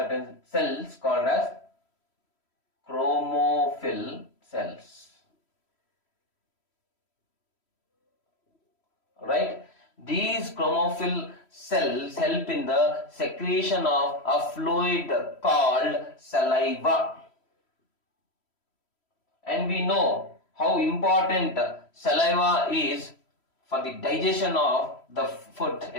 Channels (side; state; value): right; late; 3.1 ms